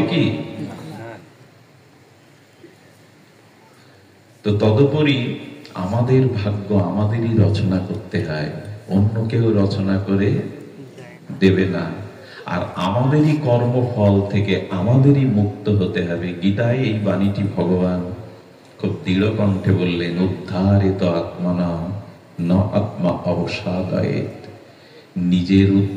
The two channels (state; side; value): identical; both; correlation 1.00